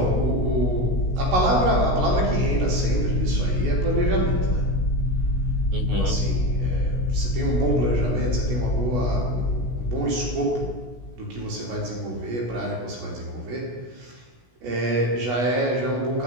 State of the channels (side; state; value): left; late; 16 ms